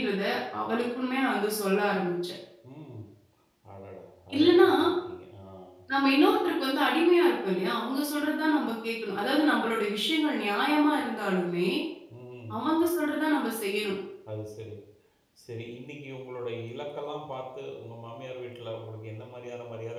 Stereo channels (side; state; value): both; identical; correlation 1.00